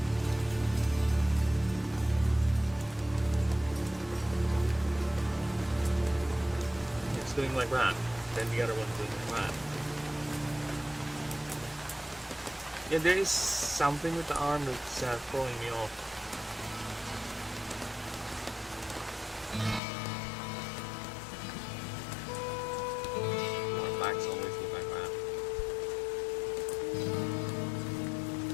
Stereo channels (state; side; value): drops out; right; at 19.8 s